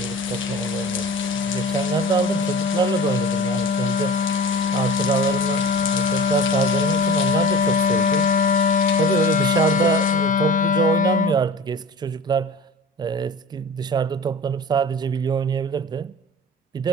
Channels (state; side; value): normal; both; correlation 0.36